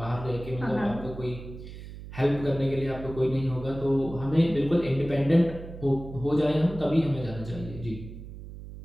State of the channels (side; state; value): right; noise; hum, 13 dB below the sound